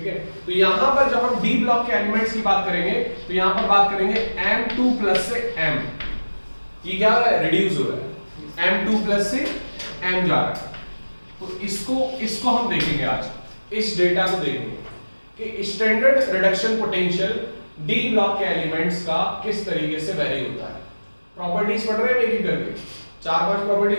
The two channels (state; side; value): inverted; both; correlation -1.00